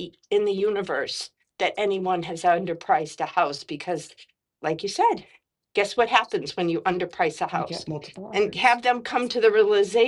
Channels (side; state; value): both; identical; correlation 1.00